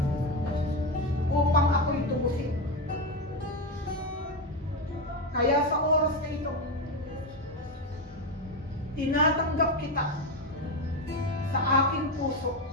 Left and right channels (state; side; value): normal; both; correlation 0.12